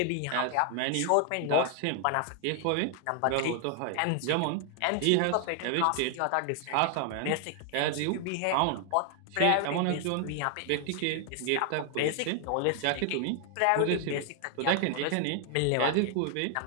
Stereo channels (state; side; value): different; both; correlation 0.00